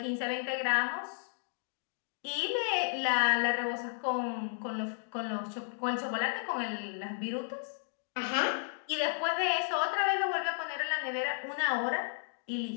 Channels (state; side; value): silent; right; digital silence